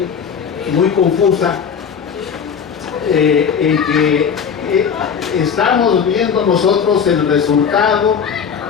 muy confusa, en que estamos viendo nosotros el resultado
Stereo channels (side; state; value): right; quieter; 7.0 dB